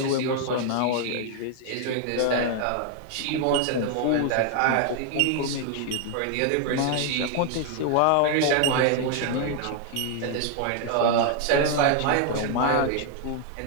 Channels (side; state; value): both; different; correlation 0.00